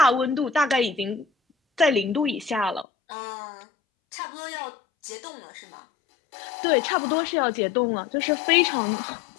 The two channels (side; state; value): right; drops out; at 2.9 s